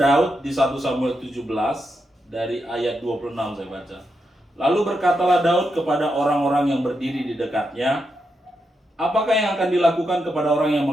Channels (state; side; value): normal; both; correlation 0.84